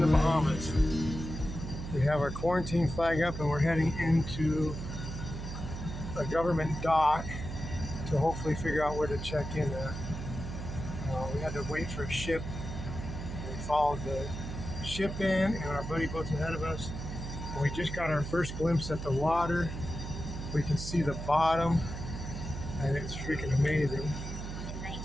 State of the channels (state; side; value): noise; right; hum, 7 dB below the sound